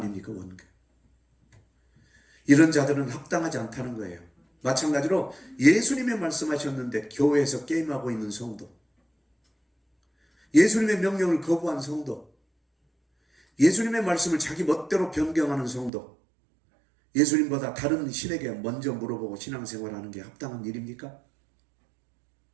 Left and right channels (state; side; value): drops out; left; at 15.9 s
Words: 원균. 이런 자들은 합당하지 않다는 거예요. 마찬가지로 예수님이 말씀하셨는데 교회에서 게임하고 있는 성도, 예수님의 명령을 거부한 성도, 예수님의 말씀을 자기 멋대로 변경하는 성도, 예수님보다 다른 신에게 먼저 물어보고 신앙생활하는 게 합당한 일입니까?